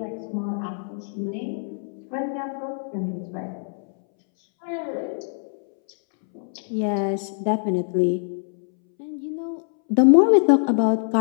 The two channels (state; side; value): silent; right; 62 dB below the other